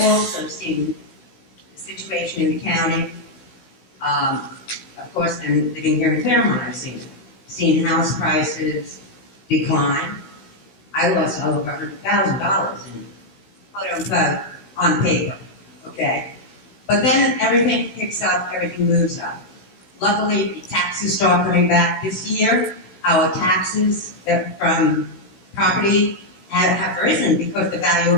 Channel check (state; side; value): late; right; 16 ms